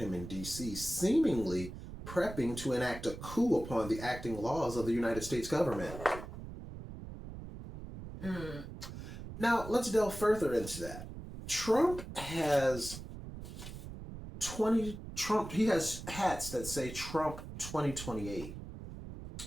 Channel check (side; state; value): right; noise; rumble, 11 dB below the sound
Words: in D.C., seemingly prepping to enact a coup upon the acting laws of the United States government. Now, let's delve further into that. Trump has he has hats that say Trump 2028.